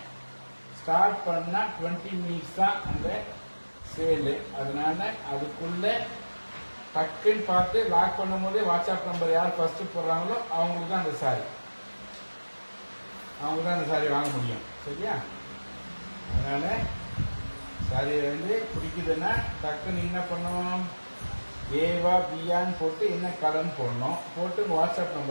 ஸ்டார்ட் பண்ணால் 20 மினிட்ஸ் தான் அந்த சேலு. அதனால அதுக்குள்ள டக்குன்னு பார்த்து லாக் பண்ணும் போதே வாட்ஸ்அப் நம்பர் யார் ஃபர்ஸ்ட் போடுறாங்களோ அவங்களுக்கு தான் அந்த சாரி வாங்க முடியும் சரியா. அதனால சாரி வந்து பிடிக்குதுன்னா டக்குன்னு என்ன பண்ணணும், ஏவா பியான்னு போட்டு என்ன கலர்னு போடணும். போட்டு வாட்ஸ்அப்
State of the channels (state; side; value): inverted; both; correlation -1.00